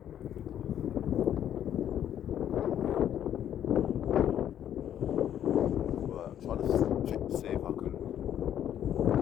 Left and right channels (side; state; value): right; quieter; 10.3 dB